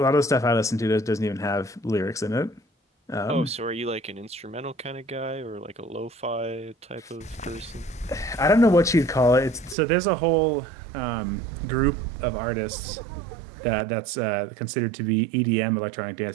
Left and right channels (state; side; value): drops out; left; at 9.8 s